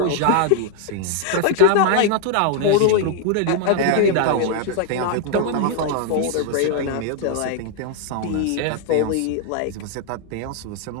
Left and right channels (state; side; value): different; both; correlation 0.00